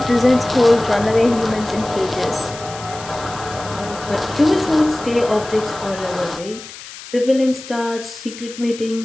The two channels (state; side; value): noise; left; hiss, 15 dB below the sound